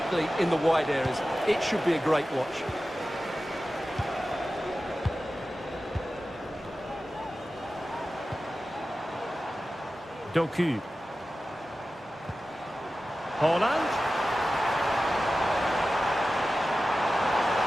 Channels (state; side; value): normal; both; correlation 0.94